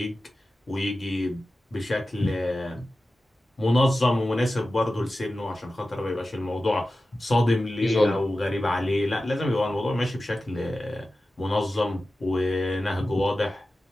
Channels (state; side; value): normal; both; correlation 0.94